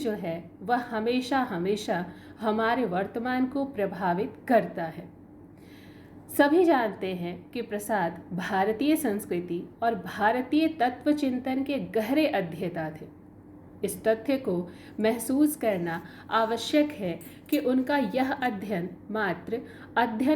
है वह हमेशा हमेशा हमारे वर्तमान को प्रभावित करता है। सभी जानते हैं कि प्रसाद भारतीय संस्कृति और भारतीय तत्व चिंतन के गहरे अध्येता थे। इस तथ्य को महसूस करना आवश्यक है कि उनका यह अध्ययन मात्र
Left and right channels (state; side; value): identical; both; correlation 1.00